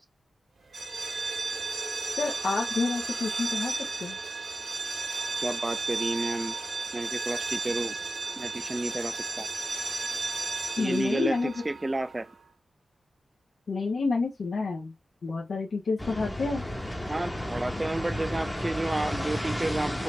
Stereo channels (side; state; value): both; normal; correlation 0.92